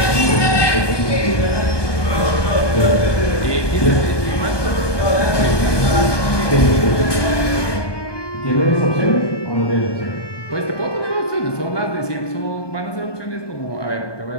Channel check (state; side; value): late; right; 1.2 ms